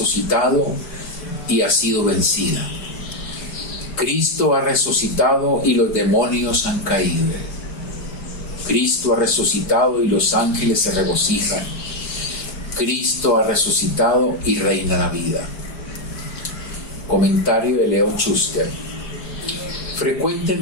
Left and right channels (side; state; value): right; late; 4.8 ms